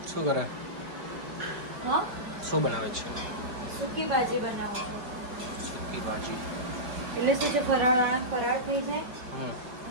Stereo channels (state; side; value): late; left; 4.9 ms